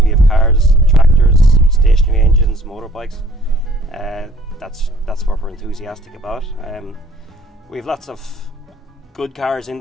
have cars, tractors, stationary engines, motorbikes. That's what we're enthusiastic about. We have lots of good cars in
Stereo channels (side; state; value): both; normal; correlation 0.57